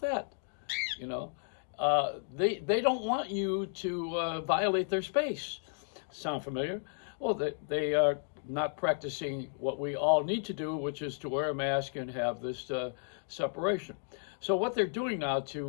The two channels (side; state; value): right; silent; digital silence